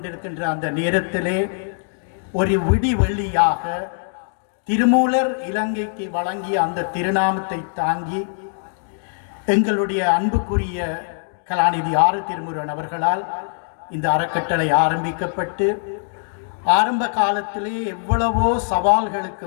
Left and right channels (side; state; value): right; silent; digital silence